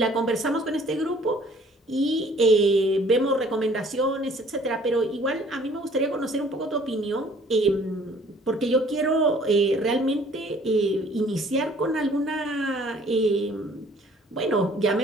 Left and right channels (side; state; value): both; normal; correlation 0.56